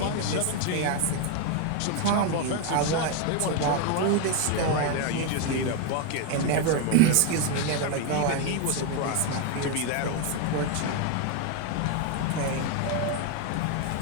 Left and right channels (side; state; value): both; different; correlation 0.01